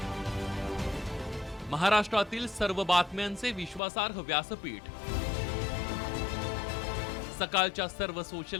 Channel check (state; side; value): drops out; right; at 3.8 s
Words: महाराष्ट्रातील सर्व बातम्यांचे विश्वासार्ह व्यासपीठ सकाळच्या सर्व